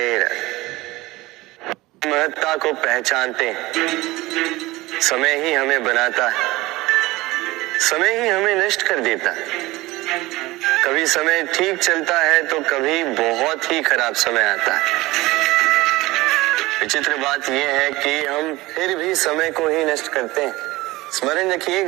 राधे। महत्ता को पहचानते हैं, समय ही हमें बनाता है, समय ही हमें नष्ट कर देता है। कभी समय ठीक चलता है तो कभी बहुत ही खराब समय आता है। विचित्र बात यह है कि हम फिर भी समय को ही नष्ट करते हैं। स्मरण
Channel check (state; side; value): quieter; left; 19.8 dB